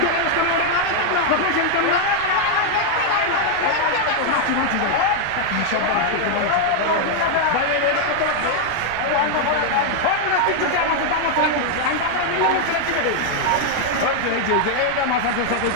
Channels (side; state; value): both; different; correlation 0.00